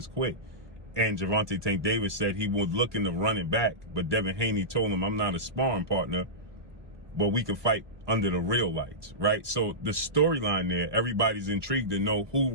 quit. And Gervonta Tank Davis said he was looking to run it back, but Devin Haney told him, I'm not a sparring partner, but we can fight under the real lights, right? So the storyline there, everybody's intrigued to know who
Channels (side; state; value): left; late; 1.2 ms